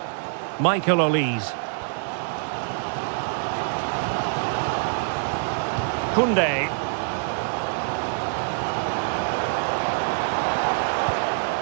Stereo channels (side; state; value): left; silent; digital silence